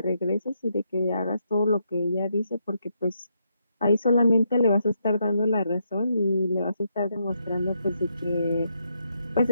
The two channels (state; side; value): inverted; both; correlation -0.78